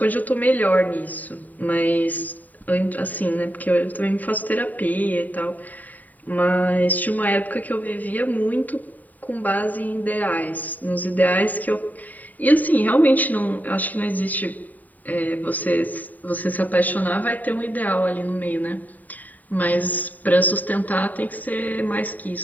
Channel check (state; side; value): late; right; 0.081 ms